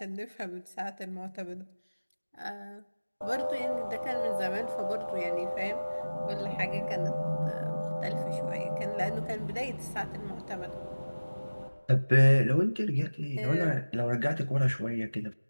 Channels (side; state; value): both; inverted; correlation -1.00